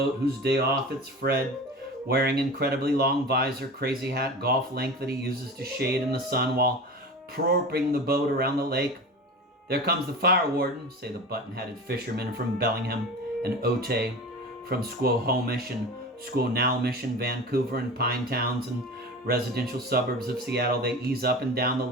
whose day off it's Fred, wearing incredibly long visor, crazy hat, golf length that he uses to shade in the sun while propping the boat around the lake. There comes the fire warden, say the button-headed fishermen from Bellingham and Otay, from Squamish and Squamish and Vancouver and Pine Towns and residential suburbs of Seattle. They ease up and down the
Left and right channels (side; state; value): both; normal; correlation 0.32